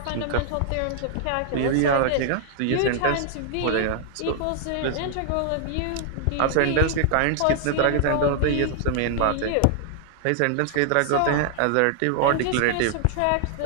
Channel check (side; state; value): both; different; correlation -0.01